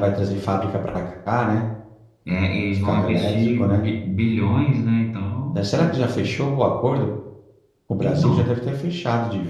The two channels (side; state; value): both; identical; correlation 1.00